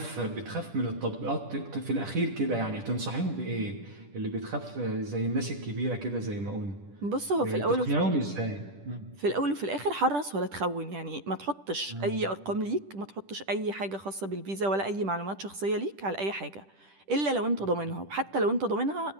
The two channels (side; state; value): left; late; 10 ms